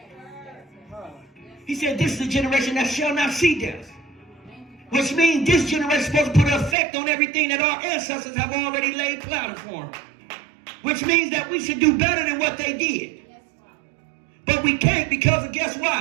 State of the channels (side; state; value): left; drops out; at 6.8 s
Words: He said, this is the generation that shall not see death. Which means this generation is supposed to put an effect on everything that our ancestors have already laid planned for. Which means that we should do better than what they did. But we can't because of guess